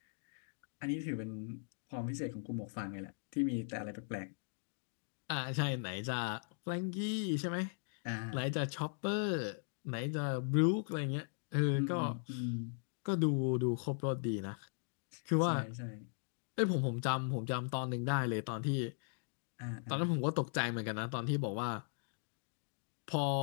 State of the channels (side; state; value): right; silent; digital silence